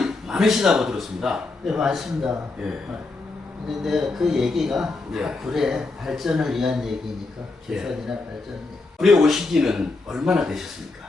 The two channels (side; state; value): right; quieter; 3.5 dB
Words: 많으시다고 들었습니다. 네, 맞습니다. 예. 근데 그 얘기가 예. 굴의 발전을 위한 얘기니까, 개선이나 발전. 굴에 오신 지는 얼마나